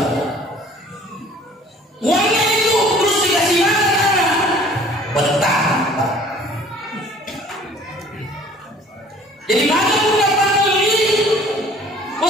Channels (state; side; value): normal; both; correlation 0.52